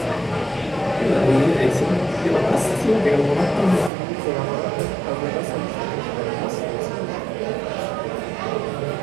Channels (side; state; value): left; drops out; at 3.9 s